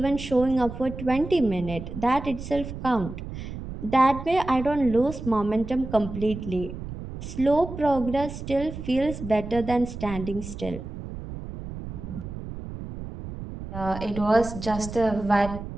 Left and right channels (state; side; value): noise; right; rumble, 9 dB below the sound